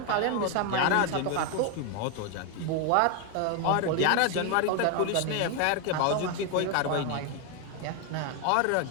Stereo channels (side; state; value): both; different; correlation 0.01